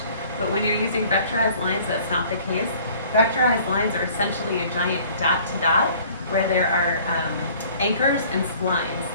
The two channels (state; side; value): inverted; both; correlation -0.52